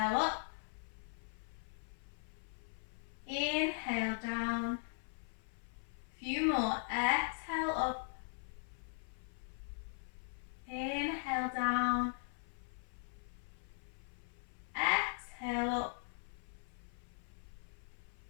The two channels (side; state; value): right; silent; 51 dB below the other